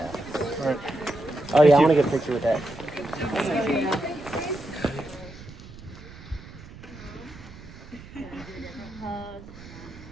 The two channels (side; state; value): right; noise; rumble, 17 dB below the sound